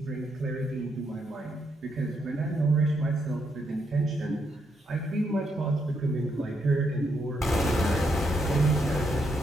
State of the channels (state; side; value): normal; both; correlation 0.78